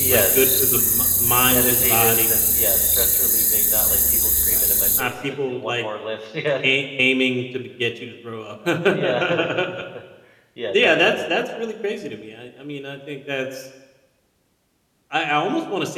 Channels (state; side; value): identical; both; correlation 1.00